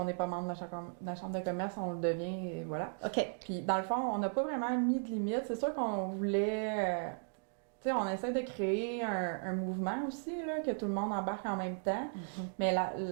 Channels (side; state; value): left; silent; digital silence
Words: n'est pas membre de la chambre de commerce, on le devient et voilà. OK. Puis, dans le fond, on n'a pas vraiment mis de limite. C'est sûr qu'on voulait... tu sais, on essaie de créer un mouvement aussi, là, que tout le monde embarque en même temps. Mais